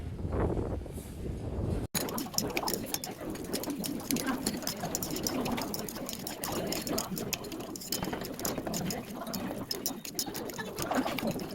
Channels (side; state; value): both; identical; correlation 1.00